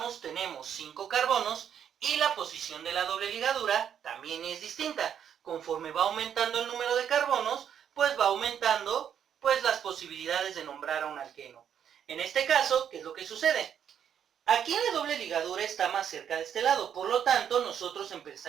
tenemos 5 carbonos y la posición de la doble ligadura también es distinta. Conforme va aumentando el número de carbonos, pues va aumentando las posibilidades de nombrar a un alqueno. En este caso, ¿qué es lo que sucede? Aquí la doble ligadura está más cerca de este lado, por lo tanto nosotros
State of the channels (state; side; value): quieter; left; 8.8 dB